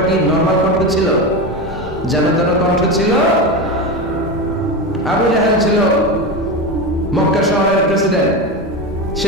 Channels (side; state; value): both; normal; correlation 0.19